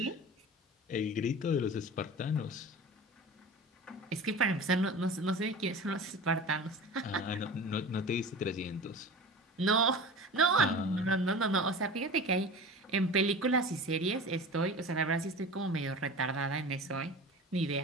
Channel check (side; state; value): both; normal; correlation 0.35